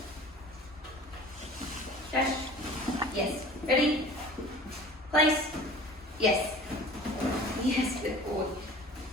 Dash. Yes. Ready? Place. Yes. Yes, good boy.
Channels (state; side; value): normal; both; correlation 0.44